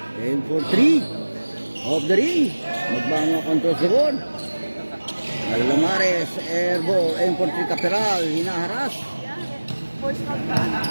Aim for 3. Off the ring. Magbanwa controls the ball. Alamares, airball, aim for 3 Caperal, hinaharas.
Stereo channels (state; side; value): inverted; both; correlation -1.00